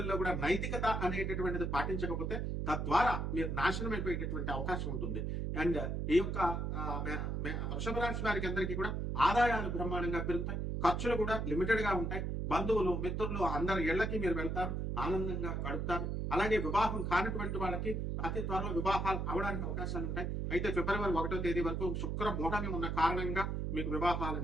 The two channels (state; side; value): noise; right; hum, 1 dB below the sound